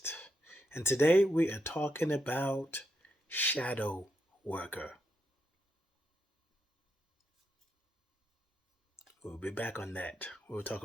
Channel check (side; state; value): both; normal; correlation 0.81